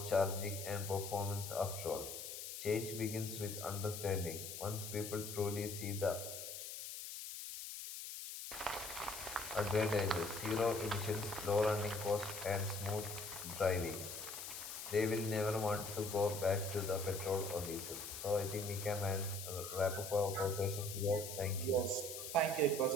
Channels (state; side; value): noise; left; hiss, 8 dB below the sound